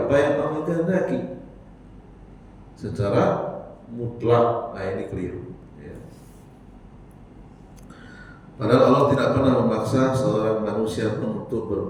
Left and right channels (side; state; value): both; identical; correlation 1.00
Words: yang Allah kehendaki secara mutlak. Nah, ini keliru, ya. Padahal Allah tidak pernah memaksa seorang manusia untuk